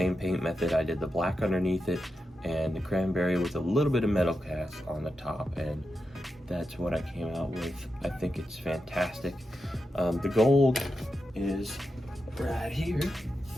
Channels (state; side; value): normal; both; correlation 0.88